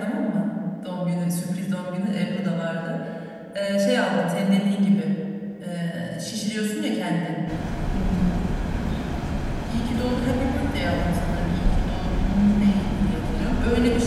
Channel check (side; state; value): both; identical; correlation 1.00